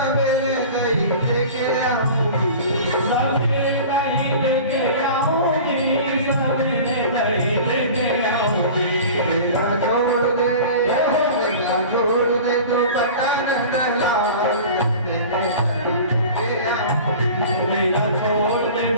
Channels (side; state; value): both; inverted; correlation -0.38